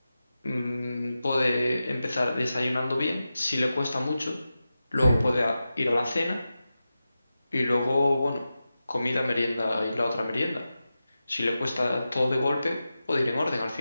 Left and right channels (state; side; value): inverted; both; correlation -0.92